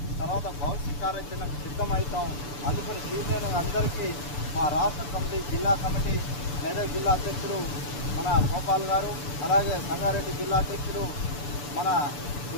తర్వాత భవిష్యత్ కార్యాచరణకు సిద్ధమవుతాం. అందుకని సీనియర్ అందరికీ మా రాష్ట్ర కమిటీ, జిల్లా కమిటీ, మెదక్ జిల్లా అధ్యక్షుడు మన గోపాల్ గారు, అలాగే సంగారెడ్డి జిల్లా అధ్యక్షుడు మన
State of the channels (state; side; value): late; right; 6.9 ms